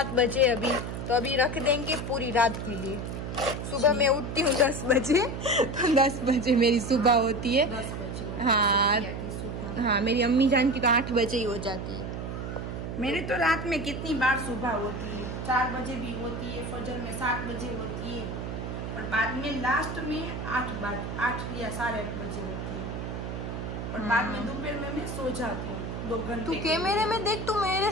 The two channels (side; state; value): right; noise; hum, 5 dB below the sound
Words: बजे अभी, तो अभी रख देंगे पूरी रात के लिए। सुबह मैं उठती हूँ 10 बजे, तो 10 बजे मेरी सुबह होती है। 10 बजे हाँ, मेरी अम्मी जान की तो 8 बजे ही हो जाती है। मेरी तो रात में कितनी बार सुबह होती है, 4 बजे भी होती है, फजर में 7 बजे होती है, और बाद में लास्ट में 8 या 8:30 बजे होती है, और बाद में दोपहर में मैं सो जाती हूँ 2 घंटे। तू कैमरे में देख, तू मेरे